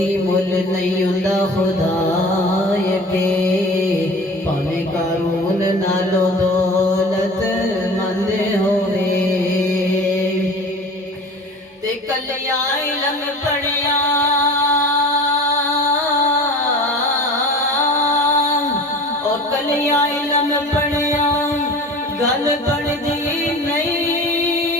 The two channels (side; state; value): both; normal; correlation 0.39